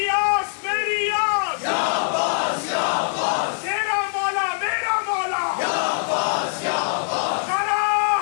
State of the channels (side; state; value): right; silent; 64 dB below the other